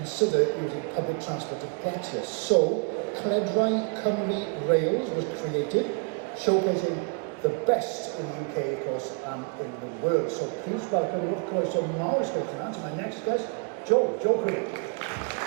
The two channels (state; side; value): quieter; left; 38.3 dB